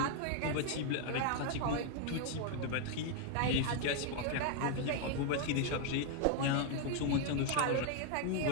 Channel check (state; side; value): different; both; correlation 0.00